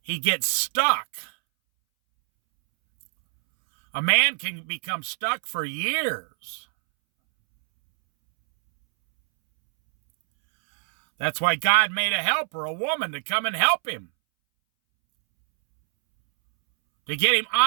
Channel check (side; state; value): left; silent; 63 dB below the other